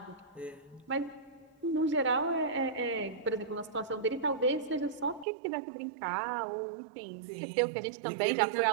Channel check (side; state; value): left; drops out; at 5.2 s